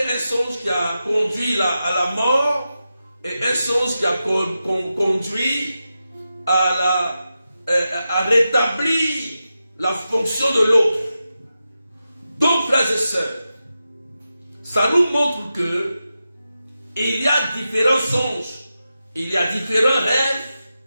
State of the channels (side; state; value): both; inverted; correlation -0.90